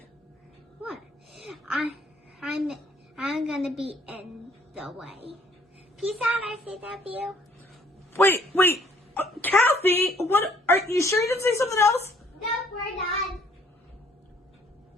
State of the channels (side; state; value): both; normal; correlation 0.61